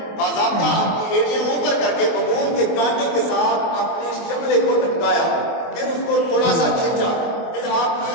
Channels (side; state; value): right; late; 24 ms